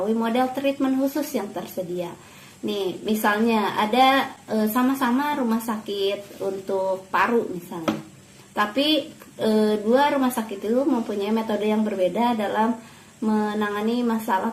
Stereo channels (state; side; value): identical; both; correlation 1.00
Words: model treatment khusus yang tersedia. Nih, misalnya ada sama-sama rumah sakit untuk paru misalnya, tapi dua rumah sakit itu mempunyai metode yang berbeda dalam menangani masalah